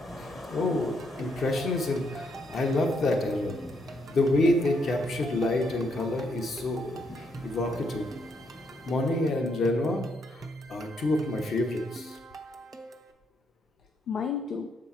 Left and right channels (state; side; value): normal; both; correlation 0.75